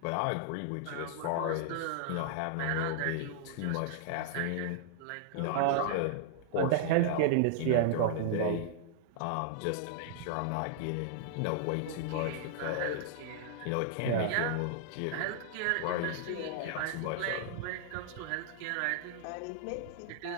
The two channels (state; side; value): different; both; correlation -0.01